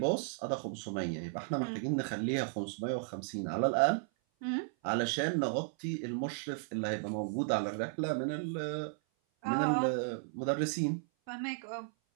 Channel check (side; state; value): left; silent; 55 dB below the other